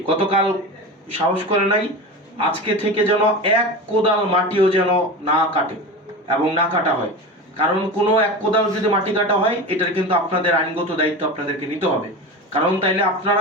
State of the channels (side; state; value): both; normal; correlation 0.27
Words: গতকাল সাহস করে নাই, আজকে থেকে যেন এক কোদাল মাটিও যেন না কাটে এবং না কাটা হয়। কারণ কোনো এক কোদাল যদি মাটি কাটা হয়, এটার কিন্তু আপনাদের আইনগত দায়িত্ব আপনাদেরকে নিতে হবে। কারণ তাইলে